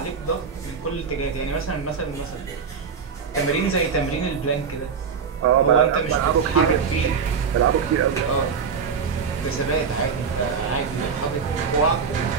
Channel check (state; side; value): quieter; left; 6.0 dB